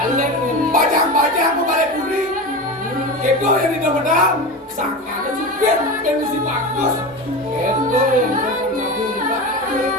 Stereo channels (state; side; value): normal; both; correlation 0.25